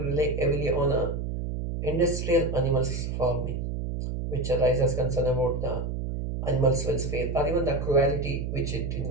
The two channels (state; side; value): noise; right; hum, 3 dB below the sound